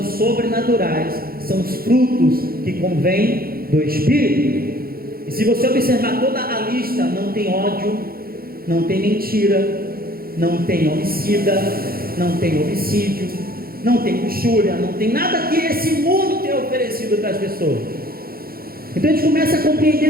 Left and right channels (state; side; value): late; left; 0.44 ms